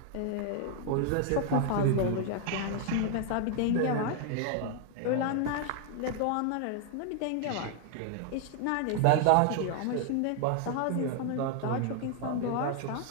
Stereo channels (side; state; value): both; different; correlation 0.00